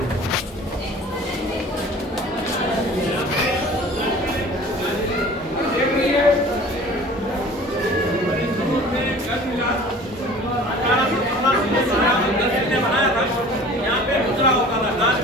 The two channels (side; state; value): both; normal; correlation 0.45